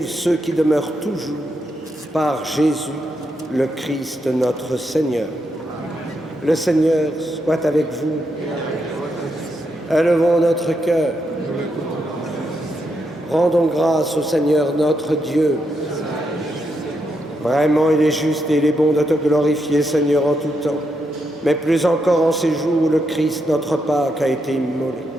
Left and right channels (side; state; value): both; normal; correlation 0.81